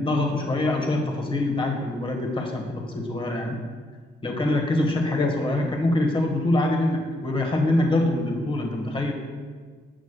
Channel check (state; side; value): normal; both; correlation 0.76